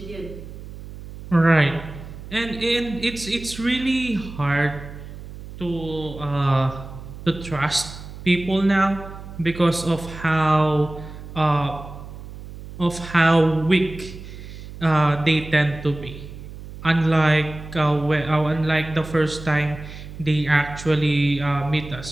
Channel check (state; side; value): noise; right; hum, 13 dB below the sound